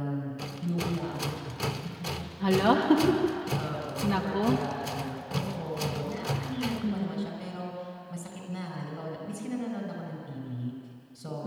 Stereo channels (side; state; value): both; identical; correlation 1.00